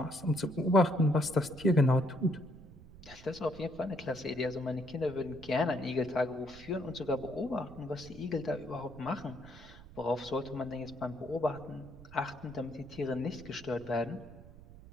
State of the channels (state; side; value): noise; right; rumble, 18 dB below the sound